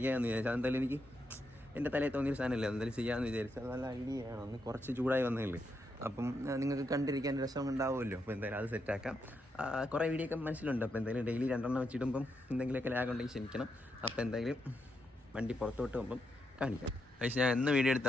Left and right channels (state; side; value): normal; both; correlation 0.82